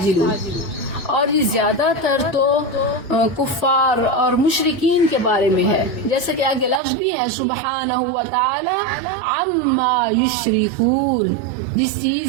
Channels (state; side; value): drops out; left; at 6.8 s